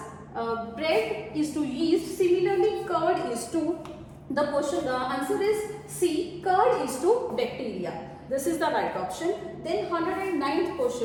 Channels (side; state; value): both; identical; correlation 1.00